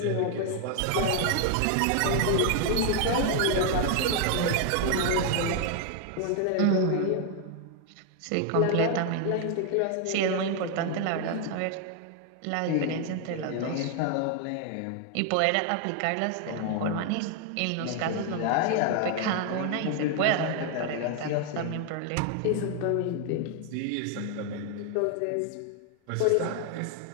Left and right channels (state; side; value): different; both; correlation 0.00